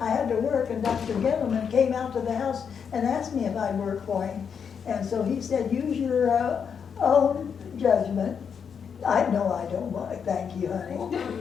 to work, and Dr. Gettleman came out to the house and asked me if I'd work for him. And so he said, use your own judgment. I know I don't want, thank you, honey.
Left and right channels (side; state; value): right; quieter; 6.9 dB